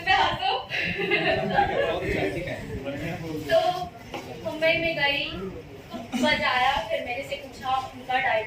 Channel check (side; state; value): both; identical; correlation 1.00